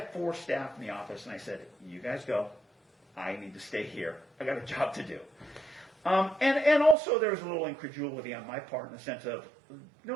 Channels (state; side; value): drops out; left; at 7.0 s